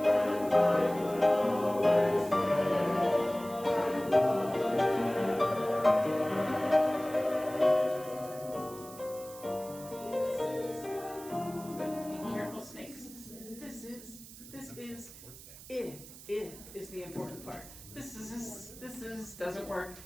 It is the important part. This doesn't work.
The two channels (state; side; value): noise; right; hiss, 17 dB below the sound